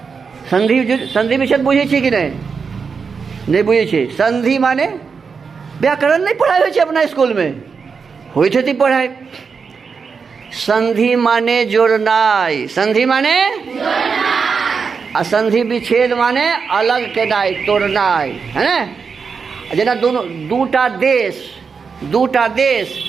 संधि विच्छेद बुझे छी कि नहीं? नहीं बुझे छी। संधि माने व्याकरण नहीं पढ़ाई होय छे अपना स्कूल में? होय छे पढ़ाई। संधि माने जोड़नाई। संधि माने जोड़नाई। आ संधि विच्छेद माने अलग केनाई, तोड़नाई, है ना? जेना दोनों दूटा देश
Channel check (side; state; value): left; quieter; 5.5 dB